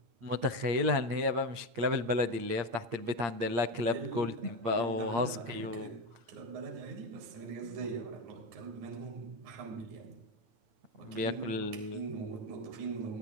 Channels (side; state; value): left; late; 8.6 ms